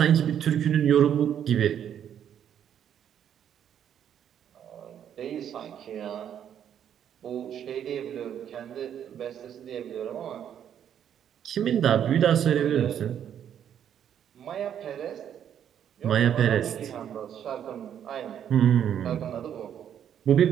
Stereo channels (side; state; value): left; quieter; 9.4 dB